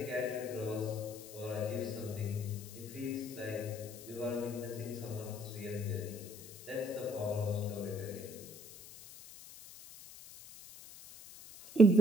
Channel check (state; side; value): noise; left; hiss, 16 dB below the sound